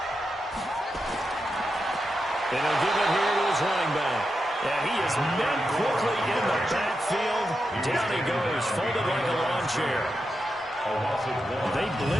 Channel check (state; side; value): normal; both; correlation 0.87